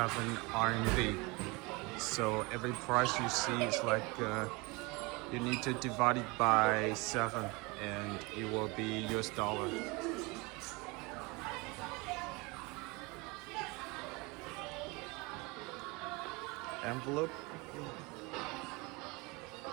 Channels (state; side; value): quieter; left; 26.1 dB